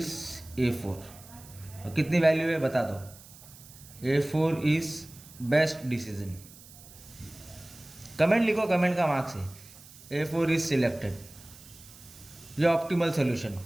A4। और कितनी वैल्यू है बता दो, A4 is best decision. Comment लिखो, कमेंट का मार्क्स है, A4 इज सिलेक्टेड, ये ऑप्टिमल सोल्यूशन।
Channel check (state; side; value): noise; right; hiss, 20 dB below the sound